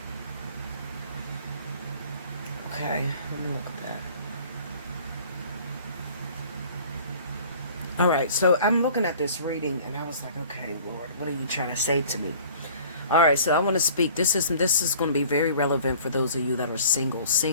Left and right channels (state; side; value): inverted; both; correlation -0.49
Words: Okay, let me look at that. All right, so I'm looking at this reading, and I was like, okay, Lord, what are you trying to say to me? All right, so I want to speak. This is going to be very relevant for those of you that are